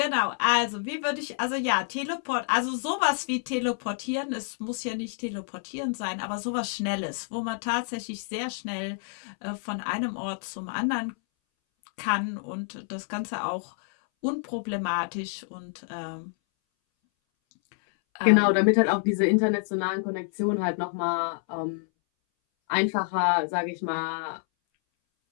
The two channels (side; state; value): right; silent; 59 dB below the other